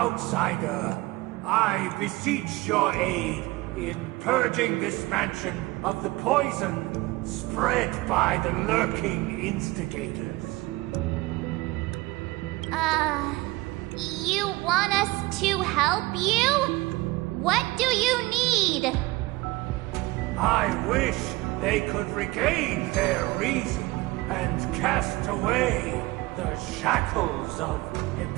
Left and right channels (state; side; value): quieter; left; 20.8 dB